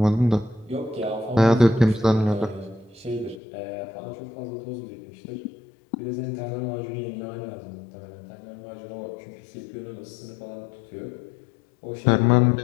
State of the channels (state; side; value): drops out; right; at 3.4 s